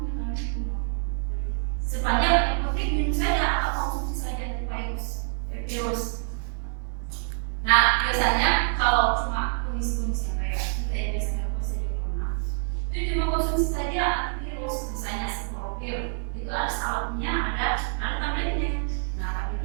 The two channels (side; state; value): left; silent; 60 dB below the other